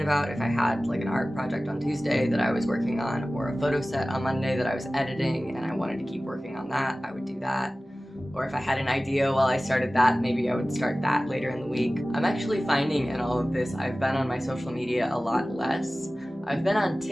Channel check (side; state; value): both; normal; correlation 0.97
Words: about, if I had like an art project on Tuesday that I was working on, or a photo set on Monday that I was editing and I wanted to keep working on that, I would do that. Or if I had an idea while I started that, maybe I would start that later in the week. I'm actually finding in all of this, I've been on my social media a lot less. I've been on